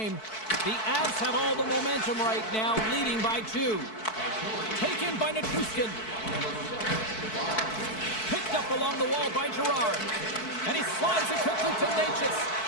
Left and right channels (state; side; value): late; right; 4.6 ms